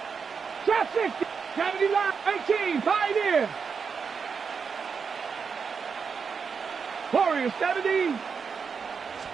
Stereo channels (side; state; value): left; quieter; 5.8 dB